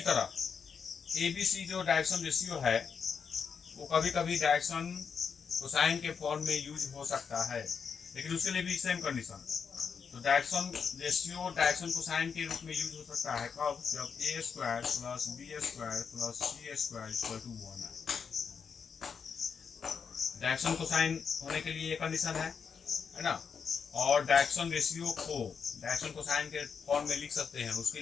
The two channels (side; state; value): right; quieter; 6.3 dB